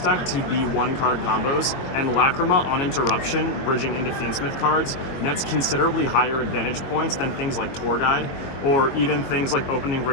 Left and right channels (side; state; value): right; late; 22 ms